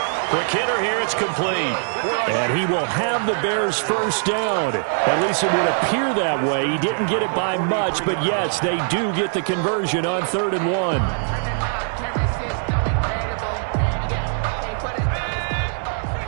Quick hitter here, it's complete. And he will have the Bears' first down. At least it would appear that way. He didn't get it by much, but yes, they do get the conversion on 3rd and 1.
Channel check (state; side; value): silent; left; digital silence